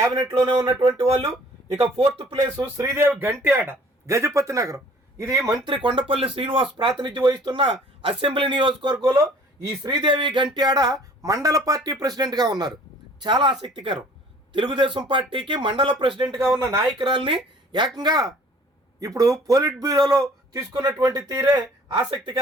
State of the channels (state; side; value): normal; both; correlation 0.53